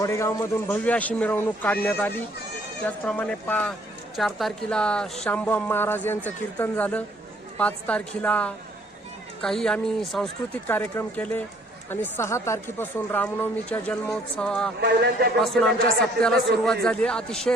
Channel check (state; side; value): normal; both; correlation 0.61